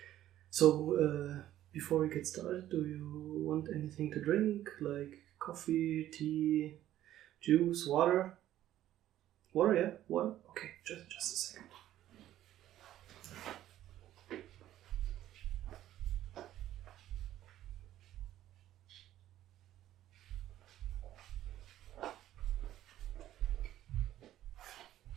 So, before we get started, do you want anything to drink, like coffee, tea, juice, water? Water, yeah? Water? Okay, just a second.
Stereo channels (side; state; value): left; quieter; 13.0 dB